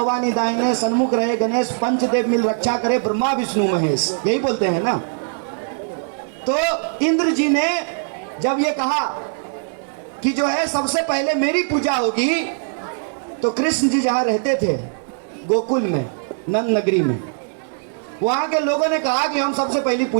दाहिने सन्मुख रहे गणेश, पंचदेव मिल रक्षा करे ब्रह्मा विष्णु महेश, यही बोलते हैं ना। तो इंद्र जी ने जब ये कहा कि जो है सबसे पहले मेरी पूजा होगी, तो कृष्ण जी जहां रहते थे गोकुल में, नंद नगरी में, वहां के लोगों ने कहा कि हम सबसे पहली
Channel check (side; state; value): left; silent; 65 dB below the other